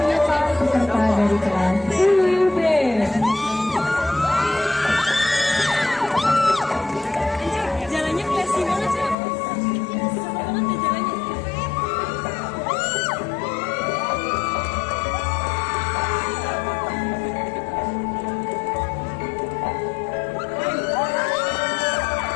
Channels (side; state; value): right; drops out; at 9.2 s